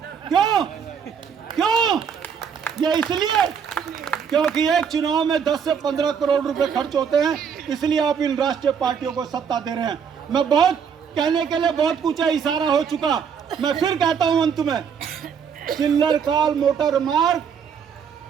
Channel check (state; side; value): quieter; left; 7.1 dB